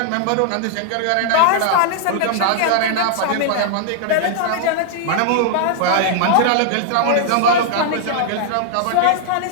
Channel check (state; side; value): different; both; correlation -0.01